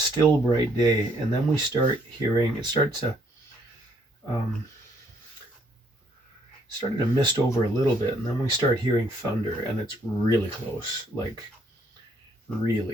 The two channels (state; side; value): normal; both; correlation 0.68